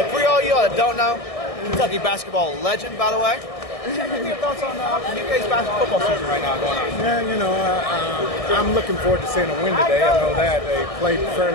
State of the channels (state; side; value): late; right; 1.6 ms